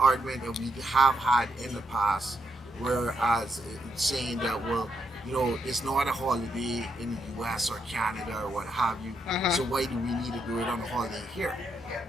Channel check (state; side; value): normal; both; correlation 0.79